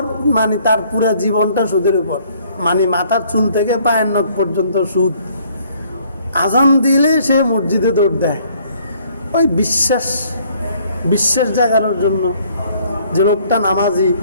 মানে তার পুরা জীবনটা সুদের উপর, মানে মাথার চুল থেকে পায়ের নখ পর্যন্ত সুদ। আজান দিলে সে মসজিদে দৌড় দেয়, ওই বিশ্বাস জাগানোর জন্য যে লোকটা নামাজি,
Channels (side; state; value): both; inverted; correlation -0.62